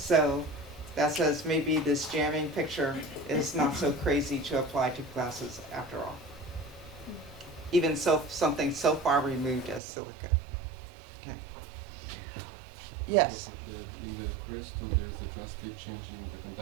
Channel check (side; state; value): left; drops out; at 9.8 s